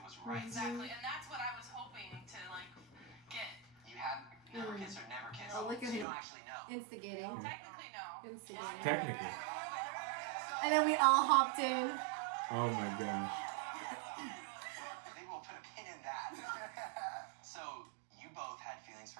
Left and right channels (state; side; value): drops out; left; at 6.1 s